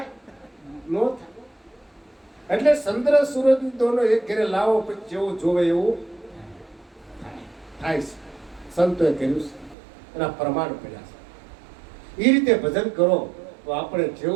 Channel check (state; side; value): drops out; left; at 9.8 s